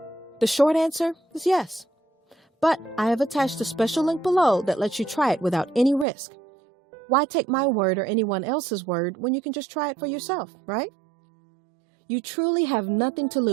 The short answer is yes. But I have attached a special link below that lets you try it without any risk. Why take my word or anyone else's word when you can just try it for yourself, right? You truly have nothing to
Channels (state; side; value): drops out; left; at 6.1 s